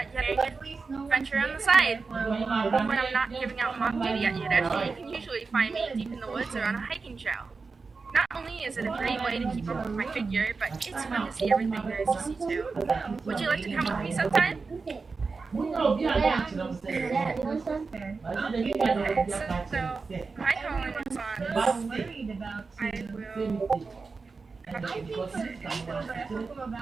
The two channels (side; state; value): left; quieter; 4.4 dB